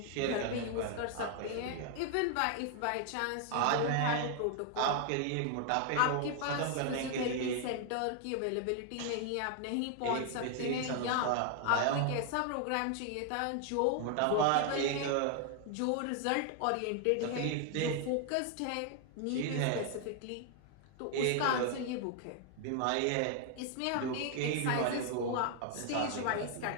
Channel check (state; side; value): different; both; correlation 0.00